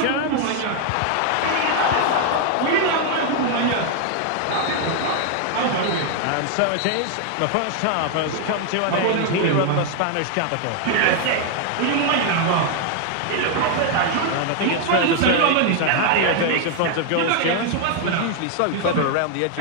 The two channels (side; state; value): both; different; correlation 0.00